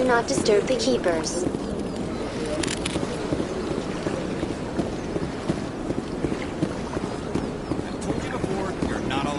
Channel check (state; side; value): identical; both; correlation 1.00